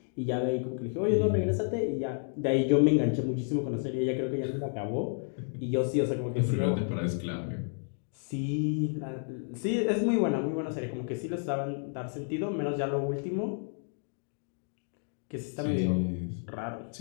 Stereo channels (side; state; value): right; silent; 57 dB below the other